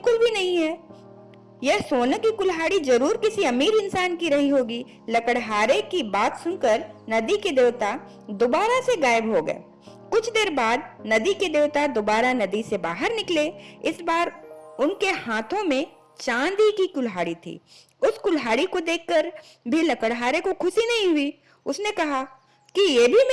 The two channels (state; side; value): identical; both; correlation 1.00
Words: भी नहीं है। यह सोने की कुल्हाड़ी जरूर किसी अमीर इंसान की रही होगी। लकड़हारे की बात सुनकर नदी के देवता दोबारा से गायब हो गए। कुछ देर बाद नदी के देवता दोबारा नदी से बाहर निकले। इस बार उनके हाथों में चांदी की कुल्हाड़ी थी। उस कुल्हाड़ी को देखकर भी लकड़हारे को खुशी नहीं हुई। उसने कहा कि ये भी